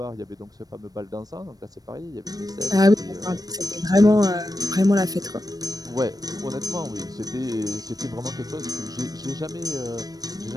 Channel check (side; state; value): left; late; 0.18 ms